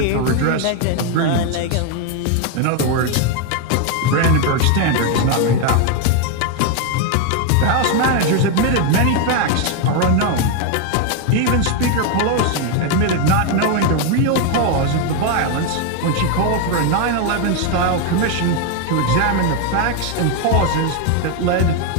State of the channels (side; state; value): both; different; correlation 0.01